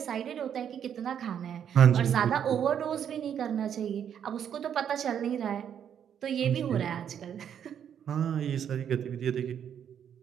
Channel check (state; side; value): quieter; left; 8.8 dB